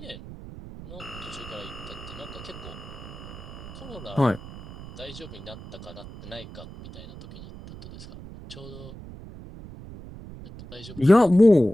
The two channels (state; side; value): noise; right; rumble, 14 dB below the sound